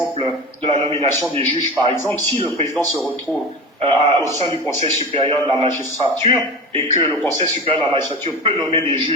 de la nomination des juges, par exemple. Si le président se retrouve au sein du Conseil supérieur de la magistrature et que le Conseil supérieur de la magistrature peut nommer des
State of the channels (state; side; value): normal; both; correlation 0.29